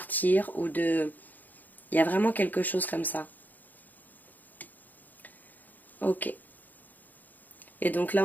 ou de... Il y a vraiment quelque chose comme ça. Ok. Et donc là,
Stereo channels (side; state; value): right; late; 0.084 ms